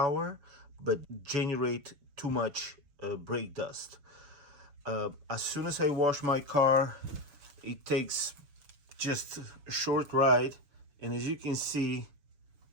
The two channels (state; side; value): late; left; 7.0 ms